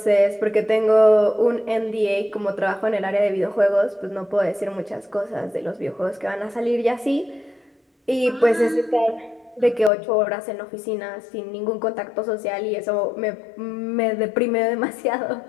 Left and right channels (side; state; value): right; drops out; at 9.9 s